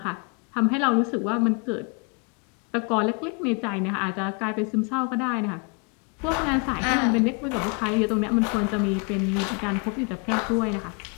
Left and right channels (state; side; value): quieter; right; 35.0 dB